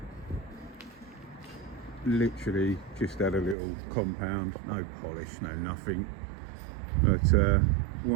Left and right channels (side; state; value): left; drops out; at 3.6 s